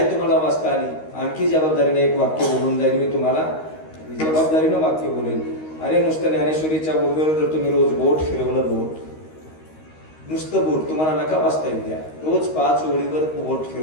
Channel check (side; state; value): right; late; 13 ms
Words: तुम्हाला वाचता आली, आणखी जबाबदारीने एक वाक्य बोलून जाईल मी तुम्हाला, जबाबदारीनं वाक्य बोलेन. अरे नुसतं ज्ञानेश्वरीच्या ओव्यावर जर तुम्ही रोज बोट फिरवलं, बोट नुसतं बोट तुम्हाला नका वाचता येऊ द्या, रोज 5 ओळीवर बोट